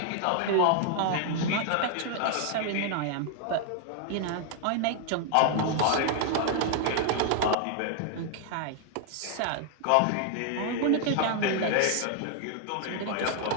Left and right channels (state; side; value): different; both; correlation 0.00